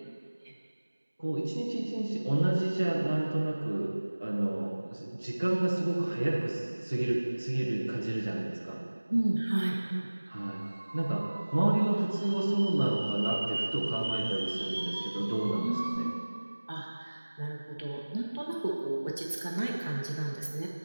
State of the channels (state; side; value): inverted; both; correlation -1.00